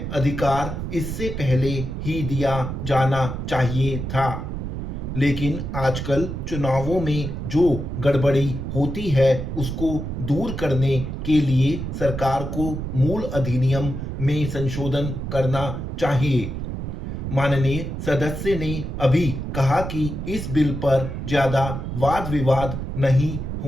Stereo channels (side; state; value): right; noise; rumble, 5 dB below the sound